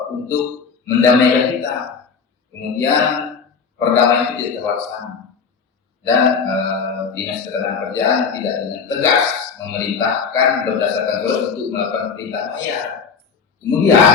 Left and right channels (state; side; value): quieter; right; 5.7 dB